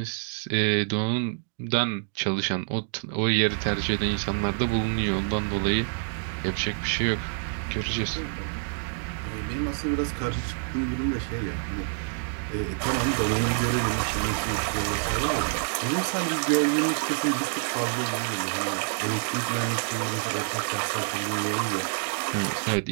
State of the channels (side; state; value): left; silent; 60 dB below the other